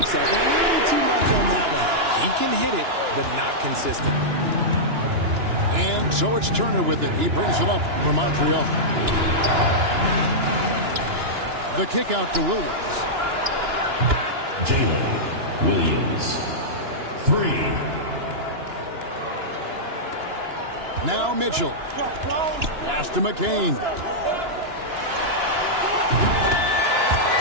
a little too much on that one. He can hit it, but not consistently. And so it's Turner with it. He brings it up for Montreal. The kick out to Williams. Jalen Williams. 3. Now Mitchell. Pass to McCain.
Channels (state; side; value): late; left; 2.9 ms